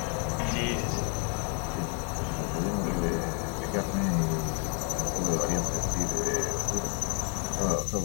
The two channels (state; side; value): quieter; right; 37.8 dB